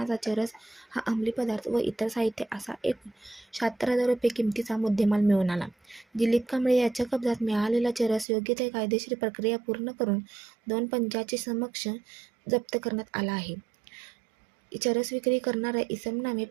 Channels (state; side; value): drops out; left; at 8.2 s